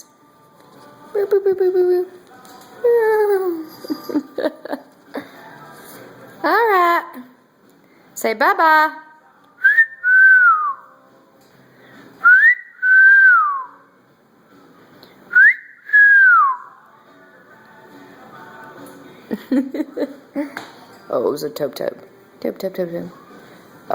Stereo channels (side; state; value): both; identical; correlation 1.00